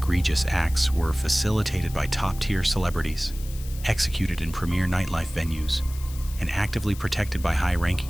acts were facilitated by top-tier celebrities, executed in premier nightlife venues, and actively protected by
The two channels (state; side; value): noise; left; hiss, 17 dB below the sound